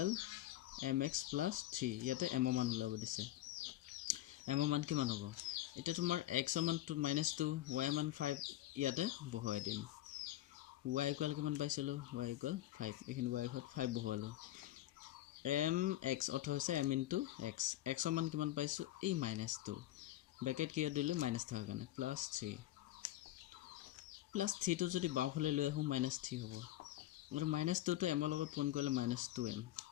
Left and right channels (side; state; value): right; quieter; 14.7 dB